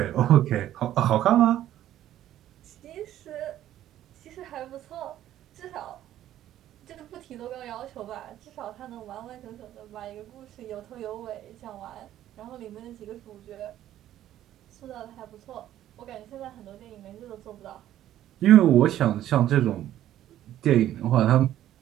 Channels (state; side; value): quieter; left; 12.5 dB